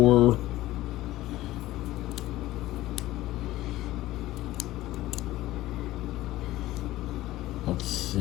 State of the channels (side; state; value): right; quieter; 16.3 dB